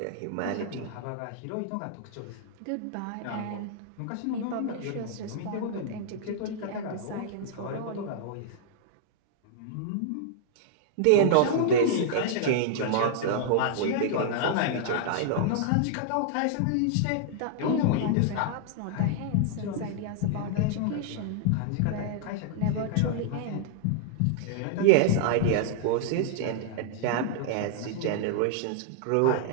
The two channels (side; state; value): both; different; correlation -0.01